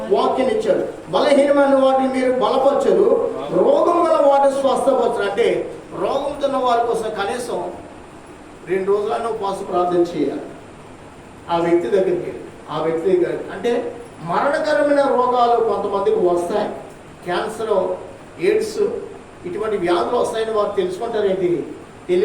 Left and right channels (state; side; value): identical; both; correlation 1.00